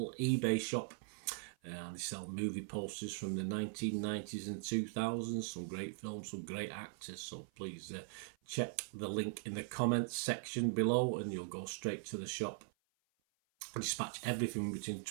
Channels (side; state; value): left; silent; 51 dB below the other